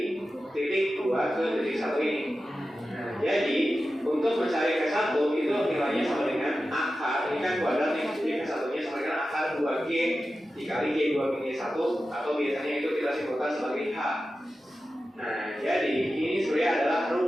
titik 2 ke titik 1 ini. Nah, jadi untuk mencari K1 itu nilainya sama dengan akar, ini kan kuadrat nih, jadi K1 nya sama dengan akar 2G dikali G2-1, atau biasanya itu kita simpulkan sebagai H. Nah, jadi ini sebenarnya adalah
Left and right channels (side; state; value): both; normal; correlation 0.93